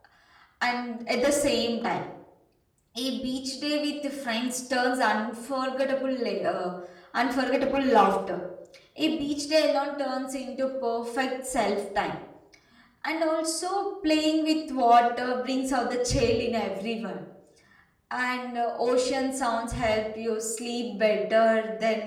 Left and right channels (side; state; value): both; identical; correlation 1.00